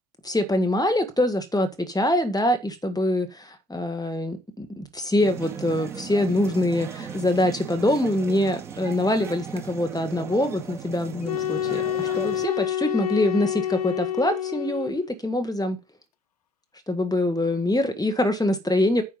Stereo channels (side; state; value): both; normal; correlation 0.67